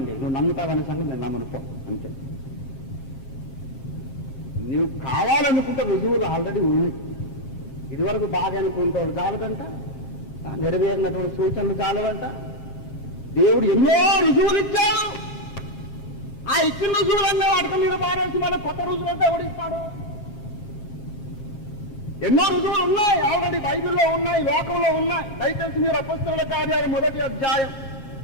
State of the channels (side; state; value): right; late; 7.4 ms